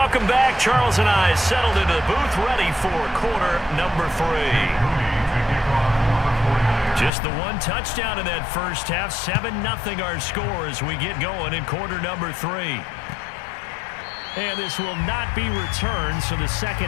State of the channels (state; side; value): drops out; right; at 7.1 s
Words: back. Charles and I settled into the booth, ready for quarter number 3. Just the 1 touchdown in that first half. 7-0 our score as we get going in quarter number 3. And this will not be returned, so the second